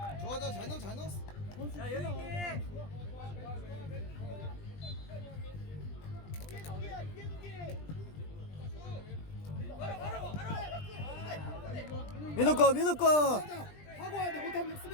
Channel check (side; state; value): right; late; 20 ms